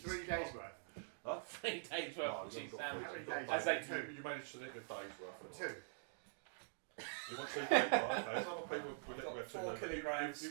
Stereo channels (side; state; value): left; silent; digital silence